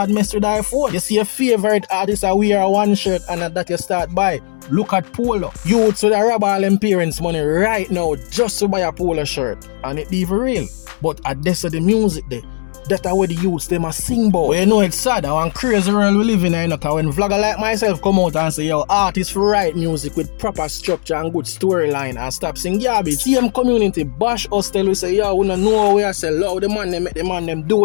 mess with the iPhone. You see your favorite artist that wear one shirt and that you start buy. Look at Polo. Youths with a rob all them parents' money right now just to buy a Polo shirt. And it even real. But at this of the music there, that's where the youths them a sing about. But you know it's sad, one crazy world we live in, you know, cause when vlogger like myself come out and say, yo, artists for write music with proper structure and good storyline and stop sing garbage. Same community bash us tell we say, yo, we don't know where I say, love the man them make the man them do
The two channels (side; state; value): right; silent; digital silence